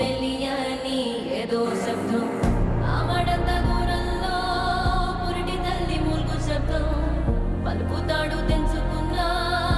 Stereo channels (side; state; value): both; identical; correlation 1.00